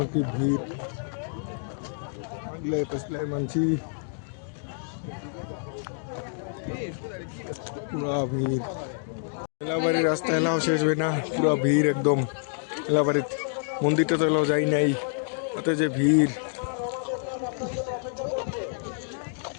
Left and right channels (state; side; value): silent; right; digital silence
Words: কি ভিড়, আগলে পেছলে মানছি পুরা ভিড়। মেলাবাড়ির রাস্তা এলাও শেষ হয় না, পুরা ভিড় একদম। মেলাবাড়ির মন্দিরটা তো এলাও যাই নাই, তাতে যে ভিড়।